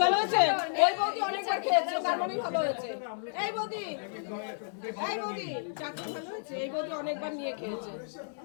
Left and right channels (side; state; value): right; silent; 57 dB below the other